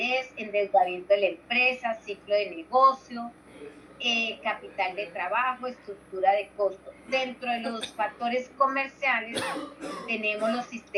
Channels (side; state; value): both; identical; correlation 1.00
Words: endeudamiento de la empresa, ciclo de negocio, capital de trabajo, estructura de costo. Dentro de los factores comerciales tenemos los